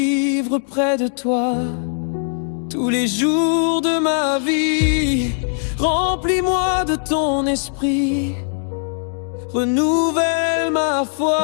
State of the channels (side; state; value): right; silent; digital silence